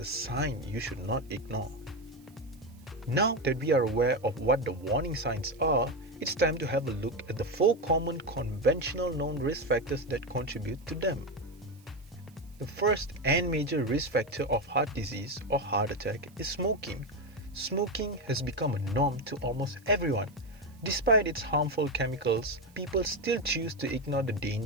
a sign you should not ignore. Now that we are aware of what the warning signs are, it's time to have a look at the 4 common conventional known risk factors that contribute to them. The first and major risk factor of heart disease or heart attack is smoking. Smoking has become a norm to almost everyone. Despite its harmful chemicals, people still choose to ignore the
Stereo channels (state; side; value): noise; right; hiss, 29 dB below the sound